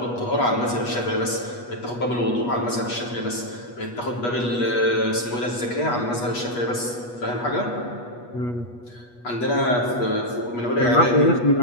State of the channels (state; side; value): late; right; 8.3 ms